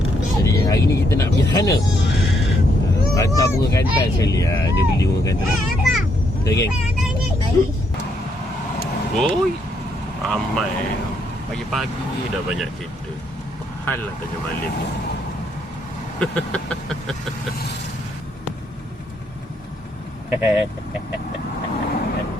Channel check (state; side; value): normal; both; correlation 0.74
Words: Jadi hari ni kita nak pergi sana. Hantar bunga kantan sekali. Dia beli bunga kantan. Okay, geng. Oi, ramai. Pagi-pagi dah banyak cerita. Hal lah tanya Malim ni.